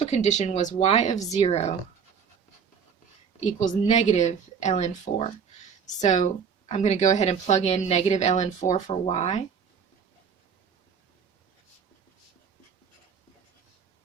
condition was y of 0 equals negative ln 4. So I'm going to go ahead and plug in negative ln 4 for y.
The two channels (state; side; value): quieter; left; 6.7 dB